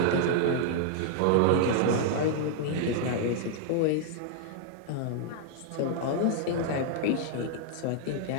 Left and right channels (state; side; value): different; both; correlation -0.01